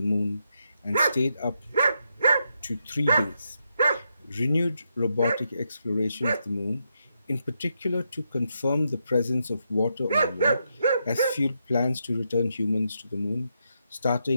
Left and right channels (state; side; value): inverted; both; correlation -0.82